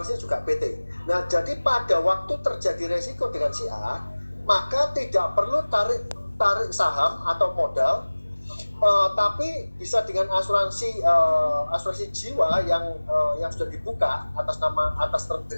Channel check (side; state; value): both; inverted; correlation -1.00